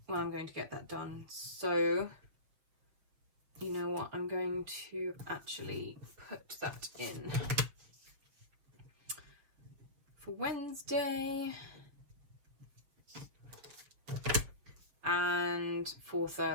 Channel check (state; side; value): late; left; 7.1 ms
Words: I'm going to get that done. So you know what, I'm going to actually put that in for Wednesday and for